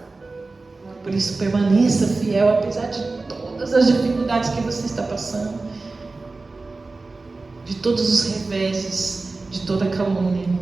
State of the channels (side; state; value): left; quieter; 3.6 dB